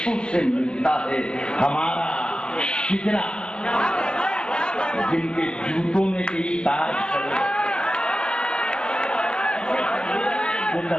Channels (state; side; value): late; right; 0.048 ms